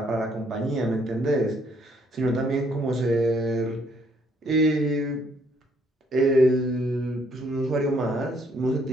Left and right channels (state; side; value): normal; both; correlation 0.67